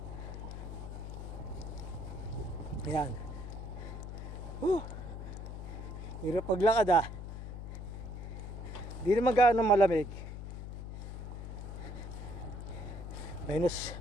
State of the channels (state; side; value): noise; left; hum, 8 dB below the sound